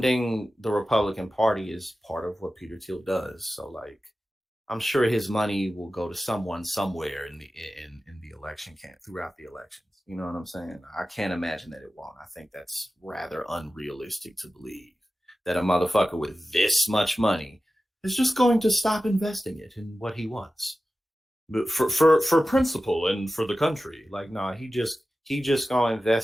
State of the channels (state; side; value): normal; both; correlation 0.95